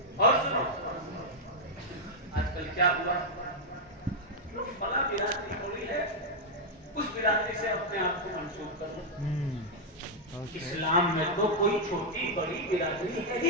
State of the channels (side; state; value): both; normal; correlation -0.03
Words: اور سنو, آج کل کیا ہوا, فلاں برادری ہوئی ہے, اس برادری سے اپنے آپ کو منسوب کرو. اسلام میں تو کوئی چھوٹی بڑی برادری ہے ہی